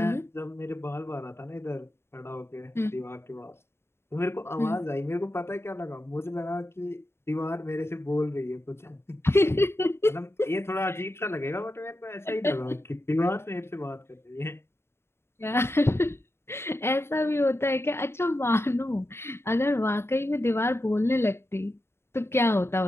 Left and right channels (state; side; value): late; right; 0.12 ms